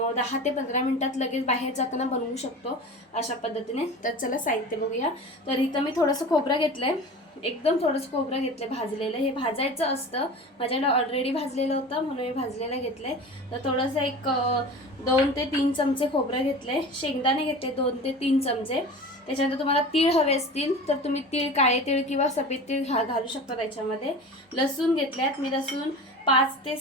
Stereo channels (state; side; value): normal; both; correlation 0.35